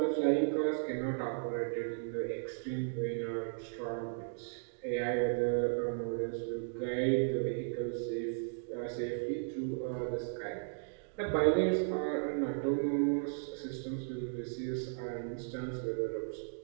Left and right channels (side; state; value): left; silent; digital silence